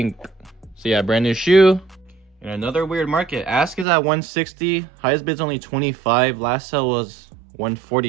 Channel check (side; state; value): left; drops out; at 3.9 s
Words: So yeah, brand new shoe. And another weird market. Ask is at 160. Highest bid's only 25. Last sale was